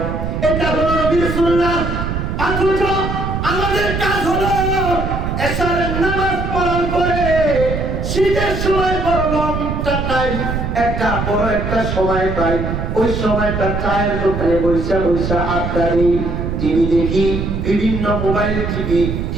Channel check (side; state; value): right; noise; rumble, 3 dB below the sound